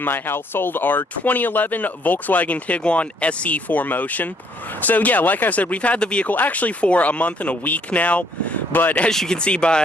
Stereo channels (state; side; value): normal; both; correlation 0.66